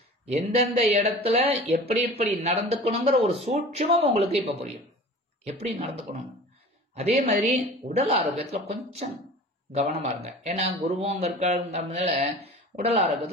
எந்தெந்த இடத்துல எப்படி எப்படி நடந்துக்கணுங்கிற ஒரு சூட்சுமம் உங்களுக்கு இப்ப புரியும், எப்படி நடந்துக்கணும். அதே மாதிரி உடல் ஆரோக்கியத்துல கொஞ்சம் கவனமா இருங்க. ஏன்னா குருவும் அங்க இருக்கிறதுனால உடல்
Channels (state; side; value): normal; both; correlation 0.40